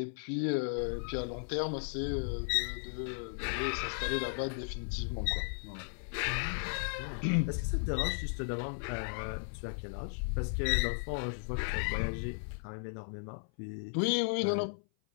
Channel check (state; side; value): silent; right; 54 dB below the other